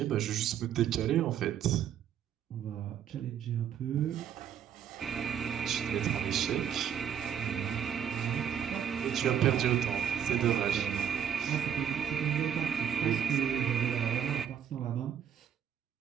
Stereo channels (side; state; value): left; quieter; 9.0 dB